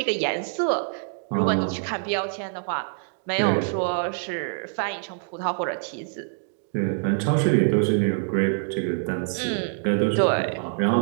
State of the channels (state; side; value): silent; left; digital silence